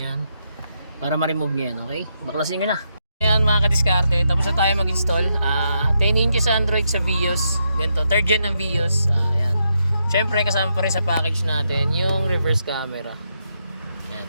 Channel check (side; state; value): both; inverted; correlation -0.81